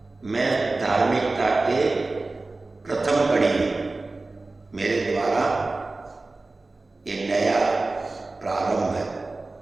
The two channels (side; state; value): left; quieter; 3.3 dB